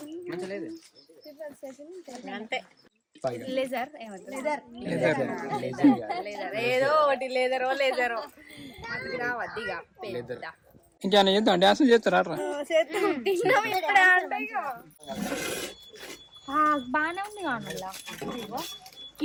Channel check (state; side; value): identical; both; correlation 1.00